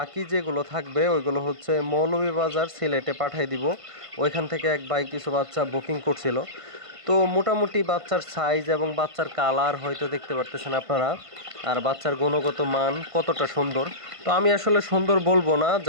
যেগুলো থাকবে ওইগুলো হচ্ছে মৌলভীবাজার সিলেটে পাঠিয়ে দিব। ওইখান থেকে এক ভাই কিছু বাচ্চা বুকিং করছিল। তো মোটামুটি বাচ্চার সাইজ এবং বাচ্চার কালার হয়তো দেখতে পারতেছেন আপনারা, আর বাচ্চার গুণগত মান কতটা সুন্দর। তো আমি আসলে সুন্দর বলবো না,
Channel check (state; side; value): late; left; 1.5 ms